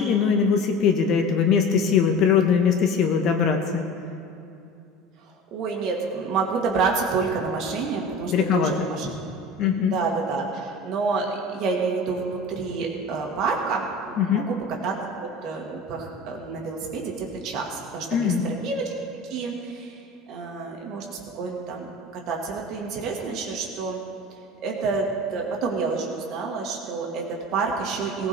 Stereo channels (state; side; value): normal; both; correlation 0.36